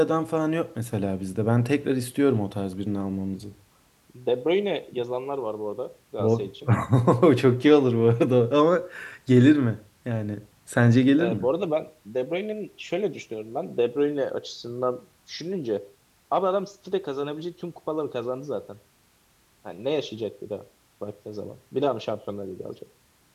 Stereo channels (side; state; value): both; identical; correlation 1.00